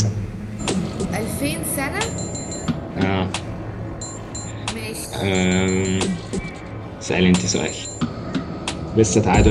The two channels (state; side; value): identical; both; correlation 1.00